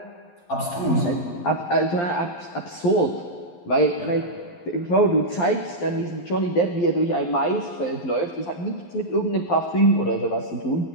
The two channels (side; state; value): right; late; 11 ms